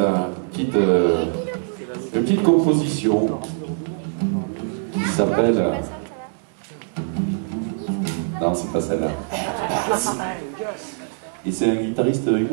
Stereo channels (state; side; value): silent; left; digital silence